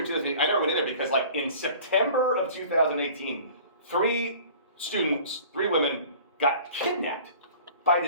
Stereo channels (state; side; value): inverted; both; correlation -0.45